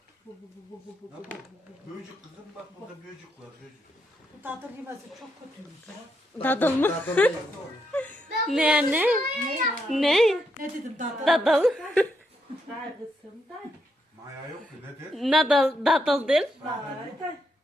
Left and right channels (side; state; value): both; normal; correlation 0.79